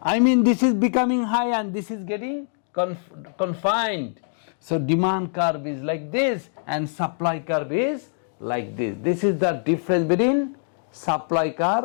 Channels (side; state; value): right; silent; digital silence